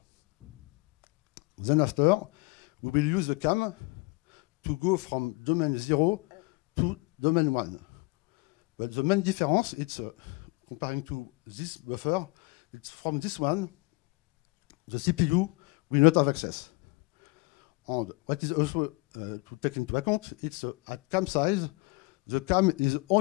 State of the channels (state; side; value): quieter; right; 26.4 dB